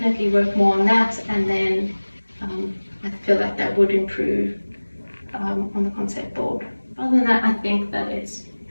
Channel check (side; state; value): both; inverted; correlation -1.00